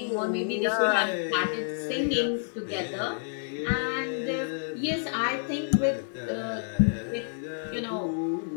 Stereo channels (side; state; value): right; silent; digital silence